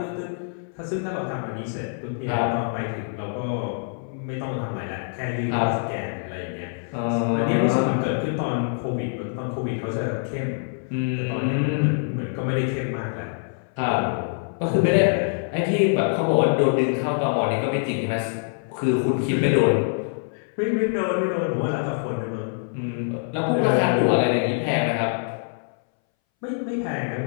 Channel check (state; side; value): silent; right; 61 dB below the other